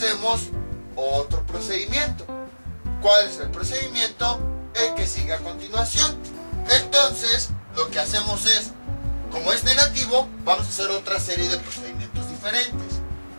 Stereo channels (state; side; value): inverted; both; correlation -1.00